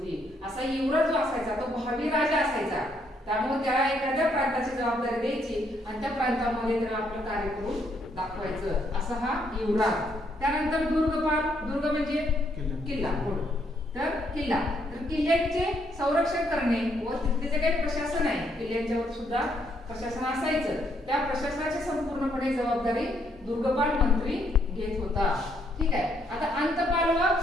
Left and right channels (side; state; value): both; normal; correlation 0.72